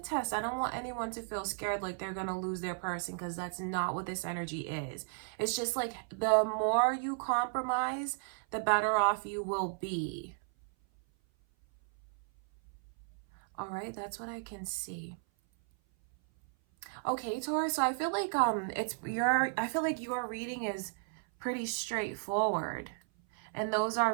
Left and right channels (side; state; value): left; silent; 55 dB below the other